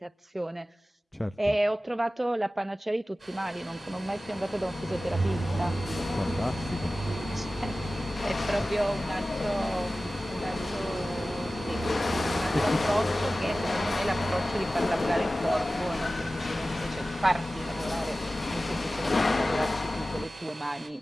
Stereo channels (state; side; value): normal; both; correlation 0.96